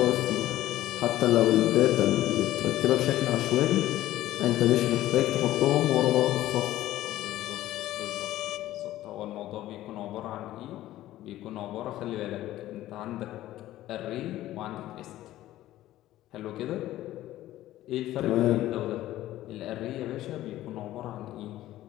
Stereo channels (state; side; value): quieter; right; 14.7 dB